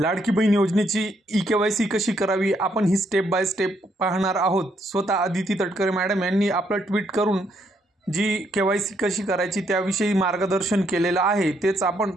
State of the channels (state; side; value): normal; both; correlation 0.73